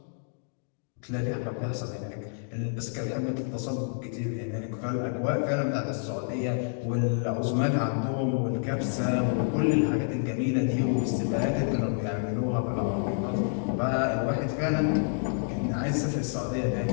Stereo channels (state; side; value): silent; right; digital silence